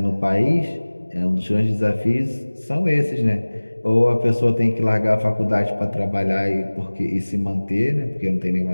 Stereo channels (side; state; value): both; inverted; correlation -1.00